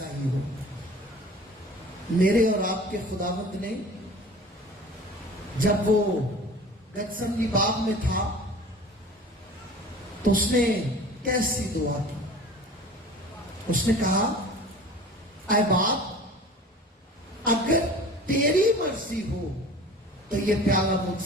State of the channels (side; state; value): both; normal; correlation 0.42